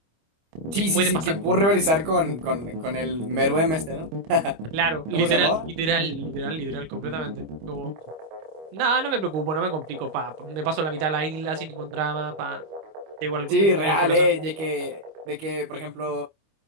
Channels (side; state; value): left; late; 25 ms